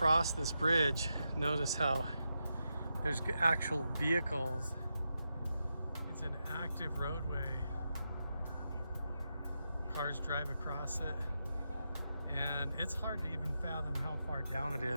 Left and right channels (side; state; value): both; inverted; correlation -0.87